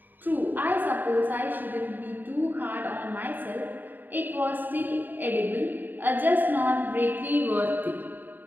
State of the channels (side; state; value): left; late; 0.090 ms